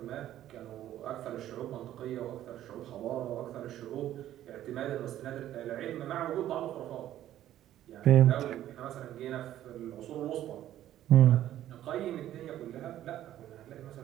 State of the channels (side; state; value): left; quieter; 12.6 dB